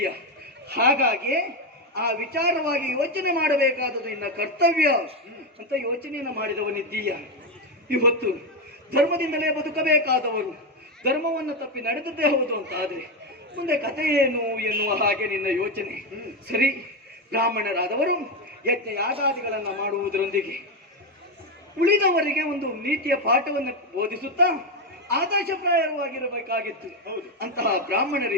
ಹಾಗಾಗಿ ಆ ವಿಚಾರವಾಗಿ ಯೋಚನೆ ಮಾಡಬೇಕಾದದ್ದು ನಿನ್ನ ಕರ್ತವ್ಯ ಅಂತ ಯೋಚನೆಯನ್ನು ಮಾಡಿದವನಿದ್ದೀಯ. ಇವತ್ತು ಧರ್ಮದಿಂದಲೇ ಬದುಕಬೇಕಾದವರು ಧರ್ಮವನ್ನು ತಪ್ಪಿ ನಡೆದದ್ದೇ ಹೌದು ಅಂತ ಆದ್ರೆ ಮುಂದೆ ಕಥೆ ಏನು ಎನ್ನುವ ಹಾಗೆ ನಿನ್ನ ಯೋಚನೆ. ಸರಿ, ಬ್ರಾಹ್ಮಣರಾದವರು ಯಜ್ಞ ಯಾಗಾದಿಗಳನ್ನು ಮಾಡುವುದರೊಂದಿಗೆ ಉಳಿದವರಿಗೆ ಒಂದು ನೀತಿಯ ಪಾಠವನ್ನು ಬೋಧಿಸುತ್ತಾ ಆದರ್ಶಪ್ರಾಯವಾಗಿರಬೇಕಾಗಿತ್ತು. ಅಂತಹ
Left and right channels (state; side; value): normal; both; correlation 0.09